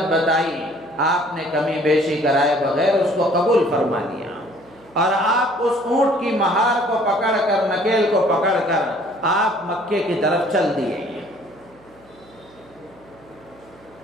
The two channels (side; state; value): right; noise; hum, 27 dB below the sound